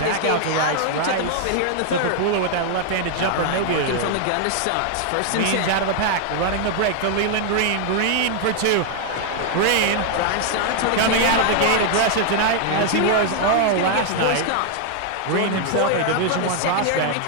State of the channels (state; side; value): different; both; correlation 0.00